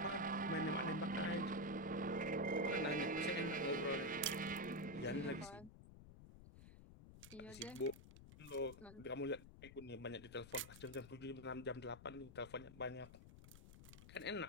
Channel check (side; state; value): left; noise; rumble, 16 dB below the sound